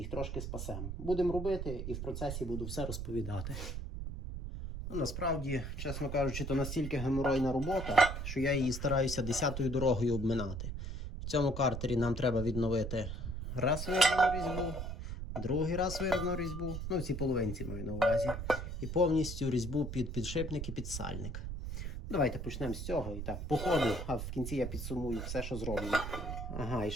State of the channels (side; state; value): right; noise; rumble, 5 dB below the sound